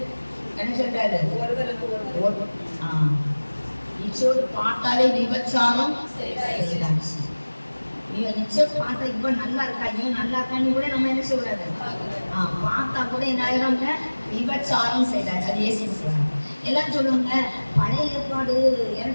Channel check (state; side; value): inverted; both; correlation -1.00